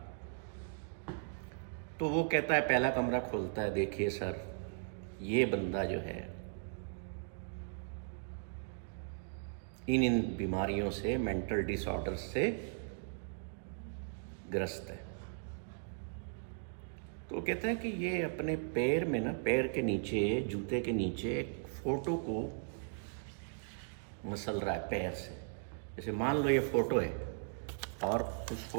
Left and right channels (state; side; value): silent; left; digital silence